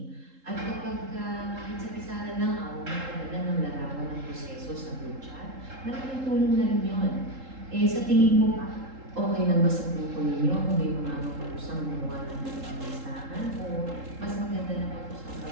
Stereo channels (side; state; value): left; late; 3.8 ms